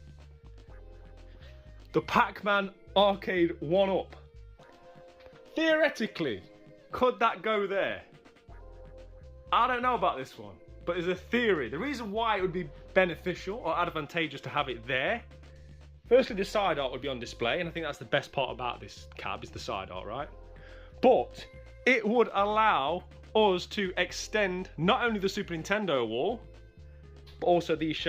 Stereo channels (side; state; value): both; identical; correlation 1.00